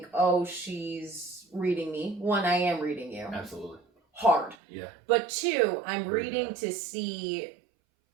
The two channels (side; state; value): left; drops out; at 4.5 s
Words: oh, she's reading me. One, I am reading you. Absolutely. Hard. Yeah. But two, I'm reading to see